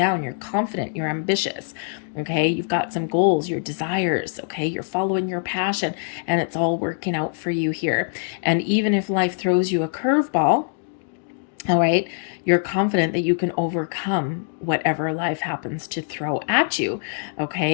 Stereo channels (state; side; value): silent; right; digital silence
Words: You're confident, you're ambitious, okay? You've got some goals, your desires, okay? You're following your passion, and it's all working out for you here. And even if life throws you a curveball, all right, you're confident that you can overcome whatever life happens to throw at you,